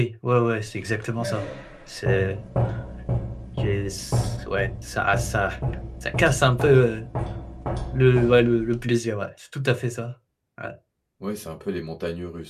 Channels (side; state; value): both; identical; correlation 1.00